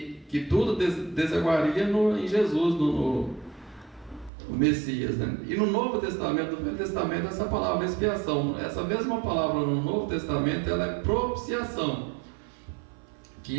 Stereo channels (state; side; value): drops out; left; at 4.3 s